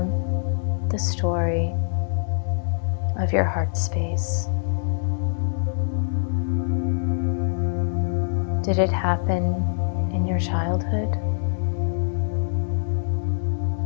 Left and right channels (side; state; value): right; silent; digital silence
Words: the story of your heart space. Did it happen in your childhood?